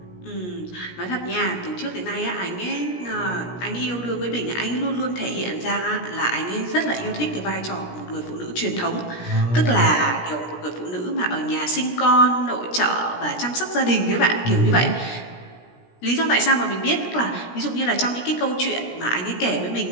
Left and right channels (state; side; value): late; right; 17 ms